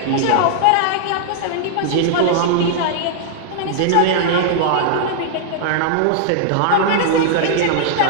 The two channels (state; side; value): different; both; correlation -0.01